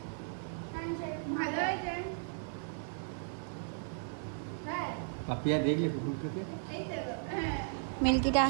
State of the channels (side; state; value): left; silent; 54 dB below the other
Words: ভালো হয়েছে। হ্যাঁ पापिया देख ले कुकुर के এই তো হ্যাঁ। মিল্কিটা